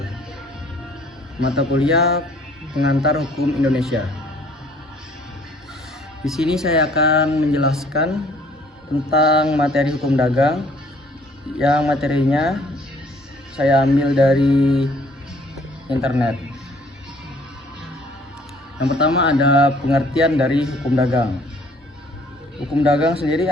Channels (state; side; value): normal; both; correlation 0.59